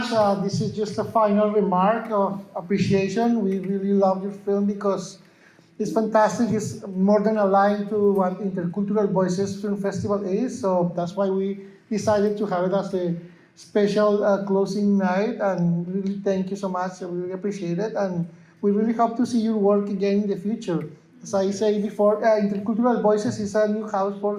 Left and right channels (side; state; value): both; identical; correlation 1.00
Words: This is just a final remark of appreciation. We really love your film because it's fantastic. It's more than aligned to what Intercultural Voices Film Festival is. So that's why we decided to have it as a special closing night. And really thank you so much. I really appreciate it. And we really hope to see your work again in the future. As I say before, Intercultural Voices is a new house